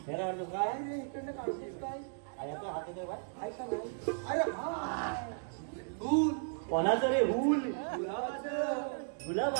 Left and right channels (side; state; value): left; silent; digital silence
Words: हेरा अर्थ काय रे इकडनं काढतोस काय आता हात येतोय बा ऐका नाही अरे हा हूल कोणाचं रे हूल गुलाबाचं